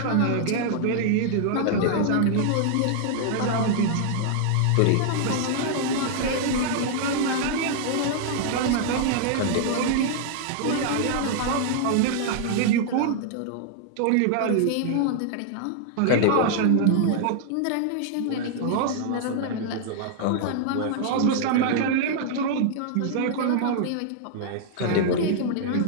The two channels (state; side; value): different; both; correlation 0.00